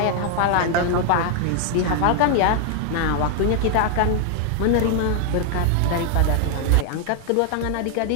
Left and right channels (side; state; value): both; different; correlation 0.00